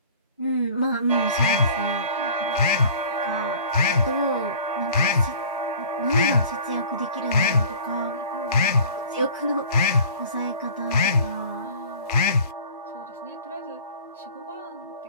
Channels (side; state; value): both; inverted; correlation -0.46